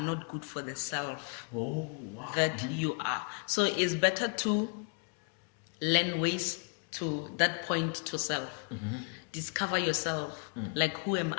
good for the self that you are. So it's better to learn ways to that point to self. Discover yourself. Like, who am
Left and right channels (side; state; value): right; quieter; 39.1 dB